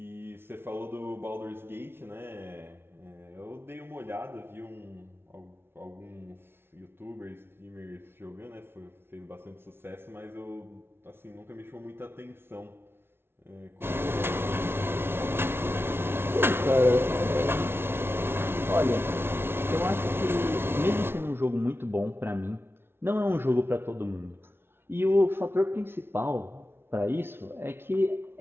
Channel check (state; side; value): late; left; 0.11 ms